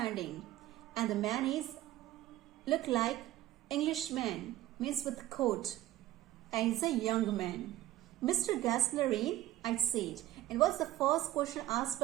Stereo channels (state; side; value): quieter; left; 14.7 dB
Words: and the man is look like Englishman. Means with coat, and he's a young man. Mr. Gassler in, I said. And what's the first question asked